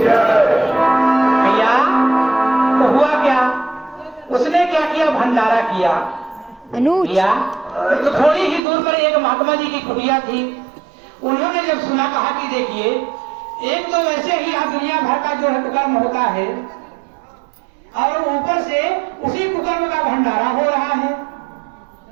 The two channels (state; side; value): drops out; left; at 8.6 s